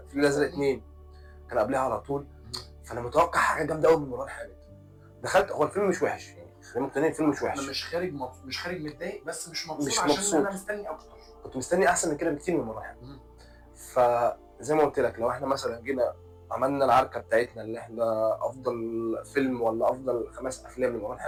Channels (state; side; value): identical; both; correlation 1.00